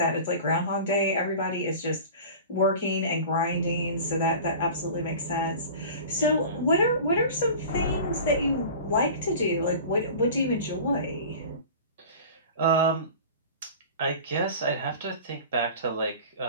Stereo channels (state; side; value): inverted; both; correlation -0.38